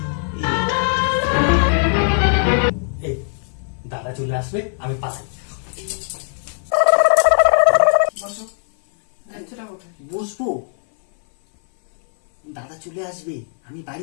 এই দাদা চলে আসবে, আমি পাশে বসো। দায়িত্বটা কোথায়? বসবো। দাদা চলে আসবে, আমি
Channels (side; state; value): right; silent; 58 dB below the other